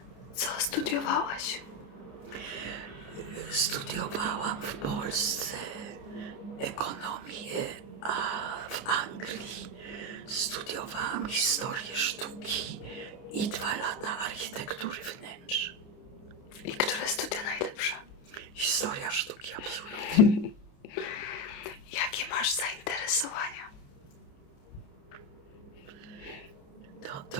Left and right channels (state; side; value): late; right; 29 ms